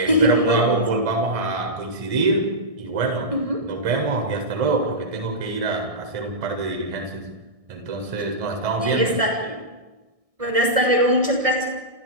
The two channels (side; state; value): left; late; 1.6 ms